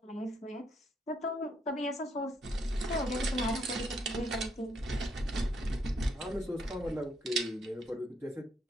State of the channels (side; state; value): both; normal; correlation 0.74